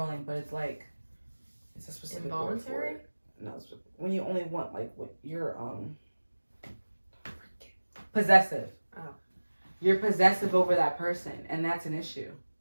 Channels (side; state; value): both; inverted; correlation -1.00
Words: but it's like, it's a specific involuntary? word for it. No, it's when you only want, like, what you're, possessive. Oh. You're possessive over that person, and that's an issue.